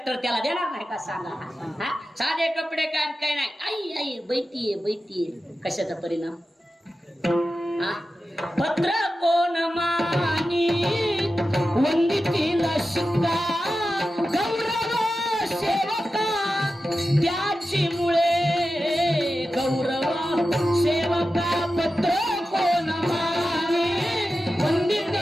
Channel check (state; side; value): normal; both; correlation 0.92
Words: त्याला देणार नाही का सांगा? साधे कपडे काय काय नाही. आई आई बैठीये बैठीये. कशाचा परिणाम? पत्र कोण मानी वंदितीला शिक्का गौरव सेवका त्याची मुळे. गौरव सेवका पत्र कोण मानी